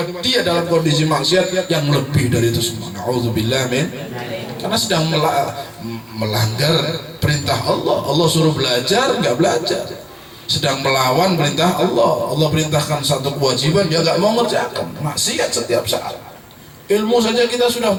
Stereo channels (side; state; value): both; identical; correlation 1.00